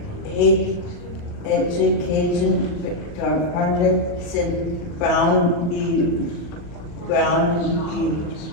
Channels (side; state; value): right; late; 40 ms